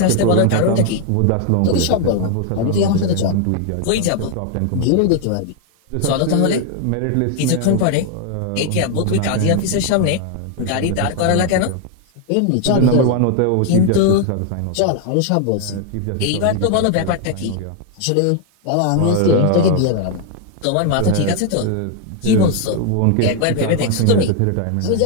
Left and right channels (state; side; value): different; both; correlation 0.00